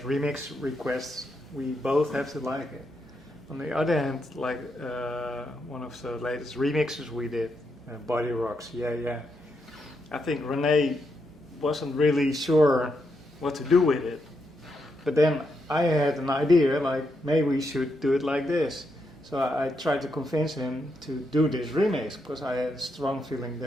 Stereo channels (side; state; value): both; normal; correlation 0.82